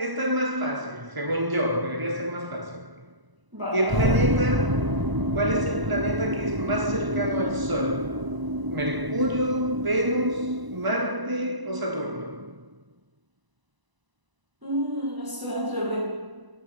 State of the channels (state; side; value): late; left; 1.0 ms